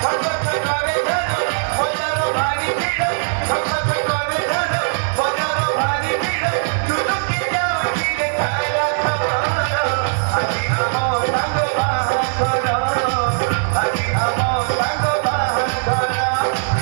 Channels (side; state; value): left; silent; 60 dB below the other